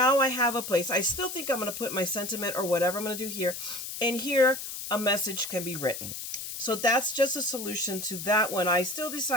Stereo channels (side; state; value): left; noise; hiss, 7 dB below the sound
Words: I have a place. I still think I'm going to put my sentiment or whatever I'm going to do here, and here a message can be written. So that's just a solution to that one. I still